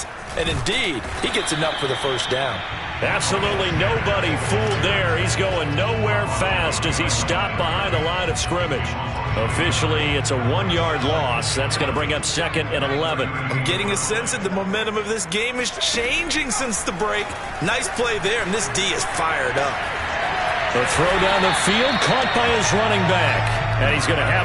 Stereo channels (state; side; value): identical; both; correlation 1.00